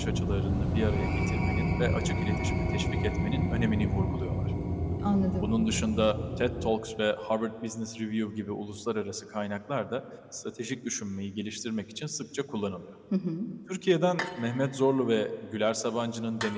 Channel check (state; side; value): identical; both; correlation 1.00